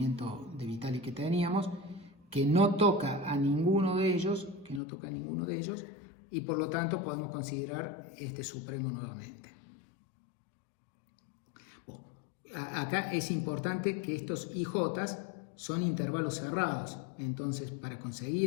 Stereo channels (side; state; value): right; drops out; at 4.8 s